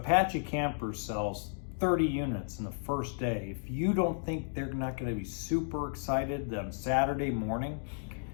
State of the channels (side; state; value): right; silent; digital silence